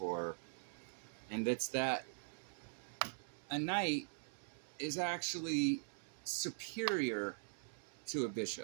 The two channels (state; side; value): silent; left; digital silence